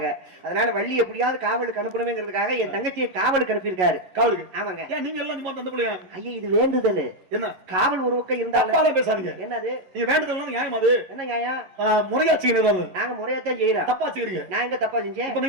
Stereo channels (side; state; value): left; late; 11 ms